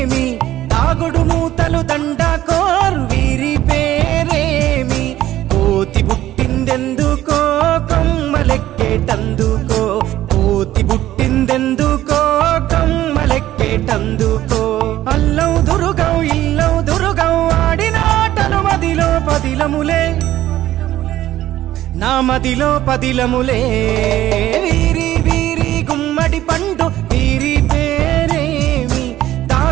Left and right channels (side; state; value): left; quieter; 13.9 dB